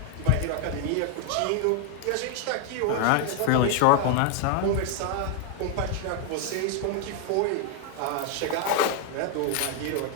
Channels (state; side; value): different; both; correlation 0.00